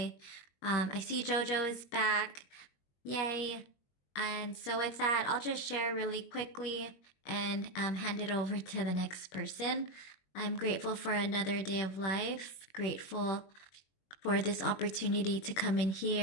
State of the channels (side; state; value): right; late; 21 ms